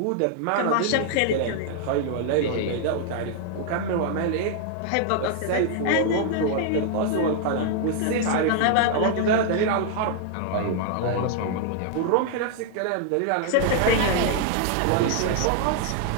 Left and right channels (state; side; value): different; both; correlation 0.00